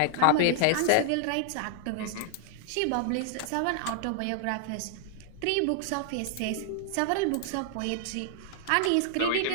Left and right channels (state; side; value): different; both; correlation -0.01